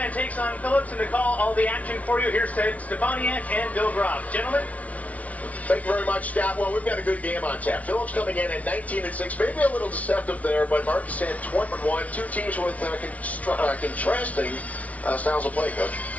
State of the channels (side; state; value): right; late; 0.068 ms